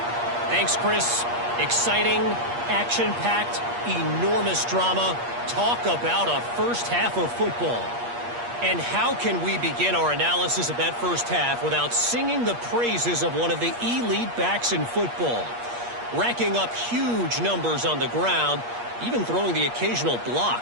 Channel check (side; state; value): left; late; 8.4 ms